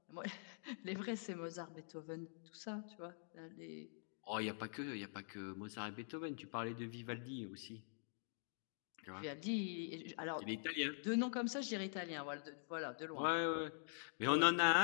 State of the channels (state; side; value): silent; right; digital silence